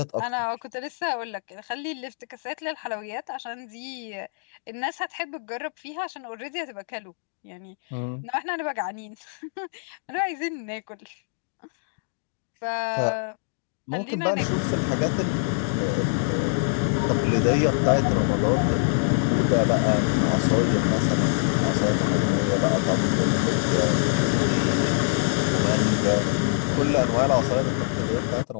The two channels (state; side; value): silent; right; digital silence